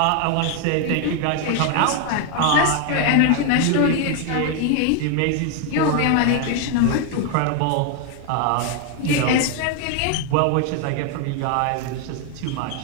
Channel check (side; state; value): both; different; correlation 0.01